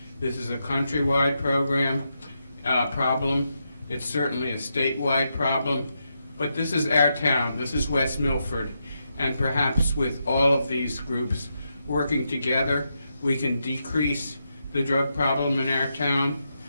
This is a countrywide problem. It's certainly a statewide problem. But this is our town. This is West Milford. And perhaps with all of these groups working together, we can decrease the drug problem in our town.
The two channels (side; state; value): both; inverted; correlation -0.84